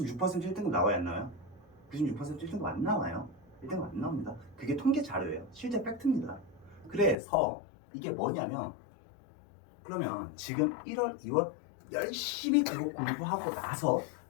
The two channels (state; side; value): drops out; right; at 7.2 s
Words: 1등급 나와야 안 나와요? 96% 1등급 안 나와요. 1등급 안 나옵니다. 그게 통계 자료예요. 실제 팩트입니다. 그래서 이게 뭐냐면, 그러면 지금 1월, 2월 열심히 그거 공부하고 나서